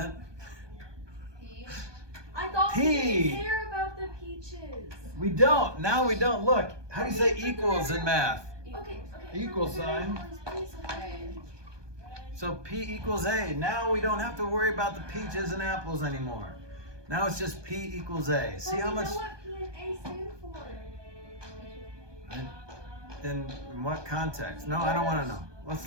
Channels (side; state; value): left; late; 1.2 ms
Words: I thought we P. didn't care about the peaches. We don't. Now we don't. Look, how do you say equals in math? Okay. Equal sign. Okay. So P equals A. Now we don't have to worry about the peaches and apples anymore. Now it's just P equals A. See how much? know what P and A stand for? In what context? No, I don't want to know. Let's